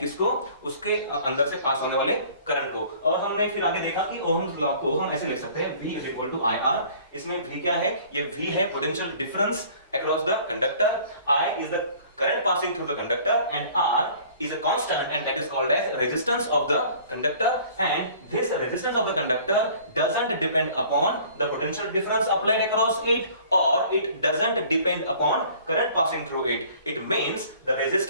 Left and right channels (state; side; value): inverted; both; correlation -0.51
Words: उसके अंदर से पास होने वाले करंट को। और हमने फिर आगे देखा कि ओहम्स लॉ को हम ऐसे लिख सकते हैं, V is equal to IR। इसमें V क्या है, ये V है potential difference across the conductor, I is the current passing through the conductor, and R is a constant, and that is called as resistance of the conductor. And this resistance of the conductor doesn't depend upon the potential difference applied across it, or it doesn't depend upon current passing through it. It means the